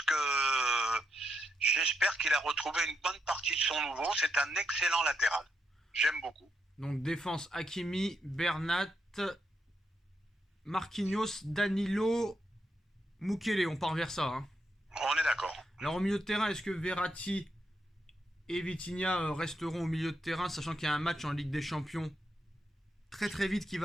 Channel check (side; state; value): both; normal; correlation 0.81